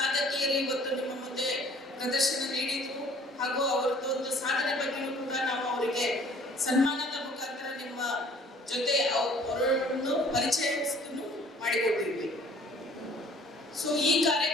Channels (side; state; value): both; normal; correlation 0.54